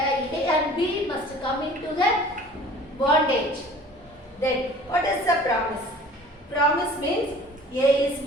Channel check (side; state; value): both; normal; correlation 0.47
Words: B must come into the bondage. Then what is the promise? Promise means A is